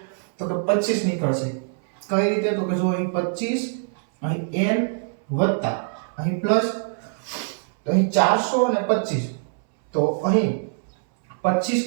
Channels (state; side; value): silent; left; 63 dB below the other